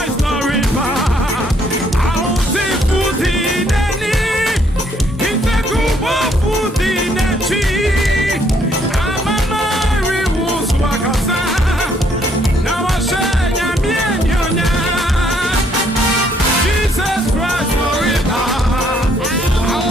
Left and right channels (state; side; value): normal; both; correlation 0.68